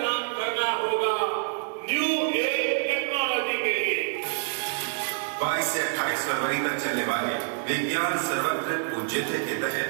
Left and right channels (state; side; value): silent; left; digital silence